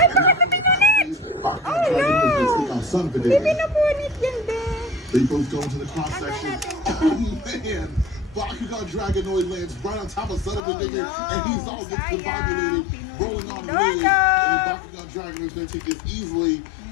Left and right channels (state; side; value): drops out; right; at 10.6 s